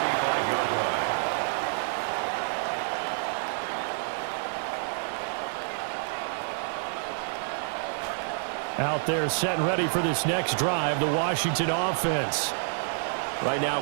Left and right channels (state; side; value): silent; left; 59 dB below the other